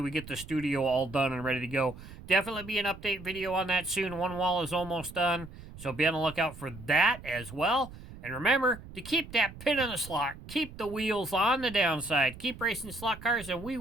we get the studio all done and ready to go. Definitely be an update video on that soon. One wall is almost done, so be on the lookout for that as well. And remember to keep that pin in the slot. Keep the wheels on the downside. Keep racing slot cars, and we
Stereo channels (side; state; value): right; noise; rumble, 15 dB below the sound